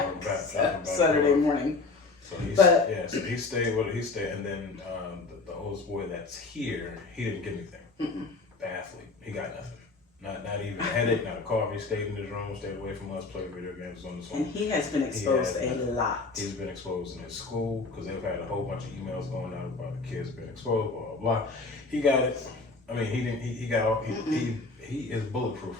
back Saturday morning. So he stayed, and then the oldest boy that's here, he didn't get anything. Athlete, he got nothing. Not even a headache, not a cough. He stayed in his room, stayed away from us, played video games on his phone. And he has been exposed a lot. He's been exposed in his school because they've had a whole bunch of emails going out about the kids being exposed, blah, blah, blah. He got it. I mean, he got all, he is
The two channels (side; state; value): right; quieter; 3.8 dB